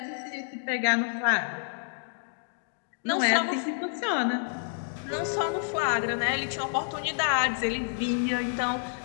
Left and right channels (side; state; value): right; silent; digital silence